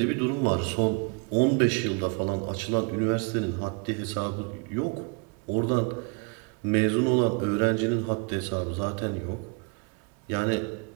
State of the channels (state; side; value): quieter; left; 33.8 dB